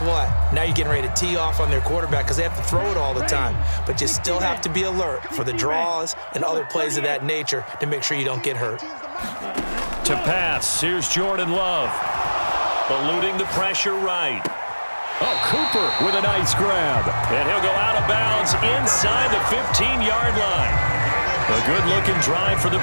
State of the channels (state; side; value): inverted; both; correlation -1.00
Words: what? Now you're getting ready to tee off on their quarterback because they have to throw it all the time. But you still have to be alert for the draws and other plays of that nature to make sure you don't get hurt. To pass, here's Jordan Love. Eluding the pressure right. Oh, Cooper with a nice grab. And he'll go out of bounds inside the 15-yard line. A good-looking drive for the